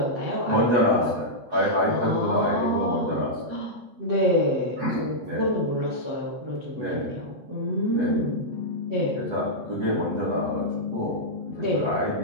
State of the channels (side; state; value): left; late; 8.0 ms